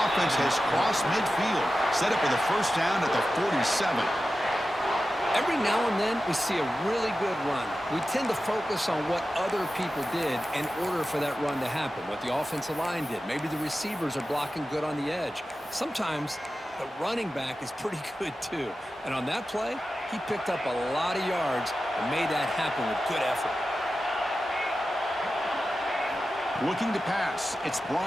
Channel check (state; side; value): normal; both; correlation 0.93